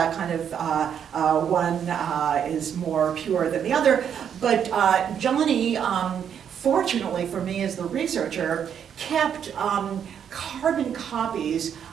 kind of one is more pure than the other. But Johnny, fortunately for me as the researcher, kept carbon copies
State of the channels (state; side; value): quieter; left; 8.4 dB